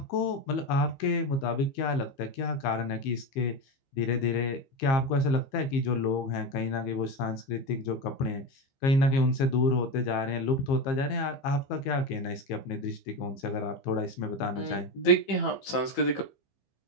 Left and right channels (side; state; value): right; late; 15 ms